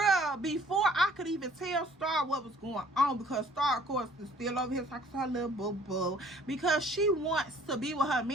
before I could even tell Star what was going on, because Star, of course, is still over here talking to her little boo-boo, because she wants to be with her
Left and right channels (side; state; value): both; normal; correlation 0.55